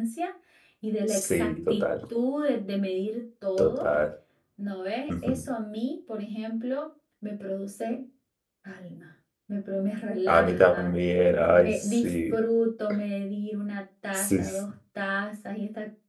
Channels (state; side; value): identical; both; correlation 1.00